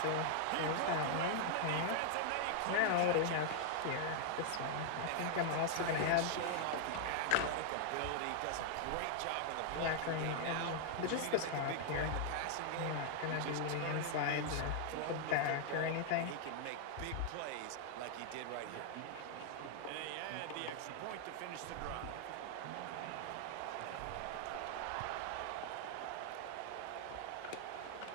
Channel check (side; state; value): both; different; correlation 0.00